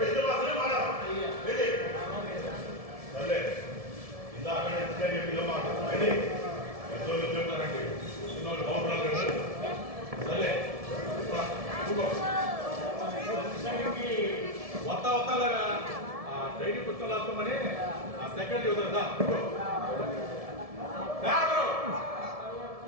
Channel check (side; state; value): left; late; 1.7 ms